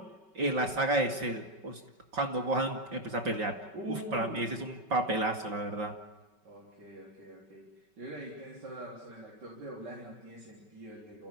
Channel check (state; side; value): late; left; 5.3 ms